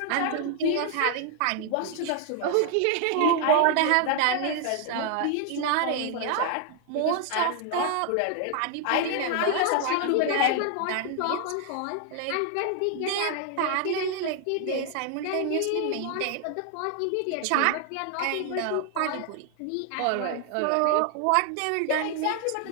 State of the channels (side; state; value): both; different; correlation 0.00